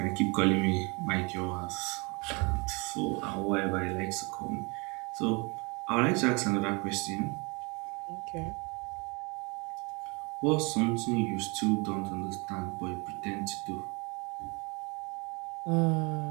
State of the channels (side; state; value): left; quieter; 29.3 dB